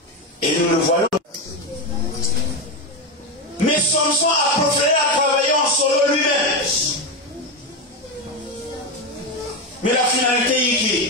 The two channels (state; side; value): normal; both; correlation 0.12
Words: Et nous le voyons. Mais Samson a préféré à travailler en solo lui-même. Mais la